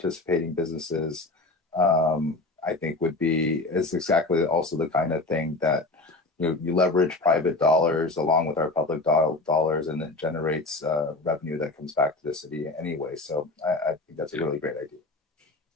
businesses, I think is exactly also the kind of thing that you leverage private dollars along with our public dollars, and it generates revenue that comes back to the city anyway. So I think that's a really great idea.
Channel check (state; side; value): quieter; right; 3.2 dB